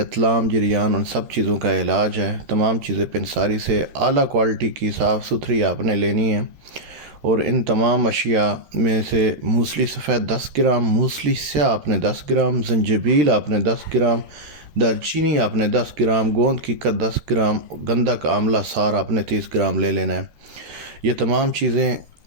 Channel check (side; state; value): left; late; 13 ms